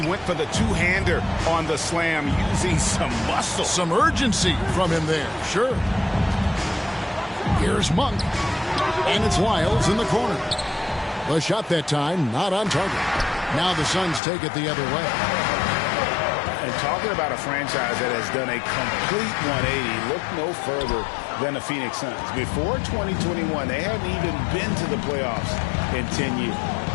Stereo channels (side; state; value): right; drops out; at 14.2 s